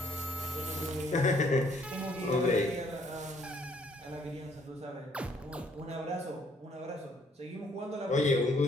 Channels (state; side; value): normal; both; correlation 0.64